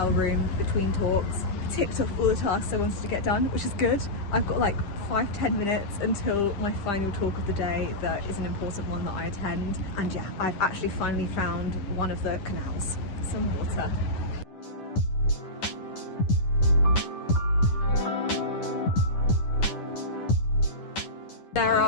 room between talks. Ticked off all the tasks I wanted to get done, which is good. I've got like 5-10 minutes until my final talk of the day that is an important one that I attend. And yeah, I've actually finally found one of the canals. Some water. There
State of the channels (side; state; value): right; late; 10 ms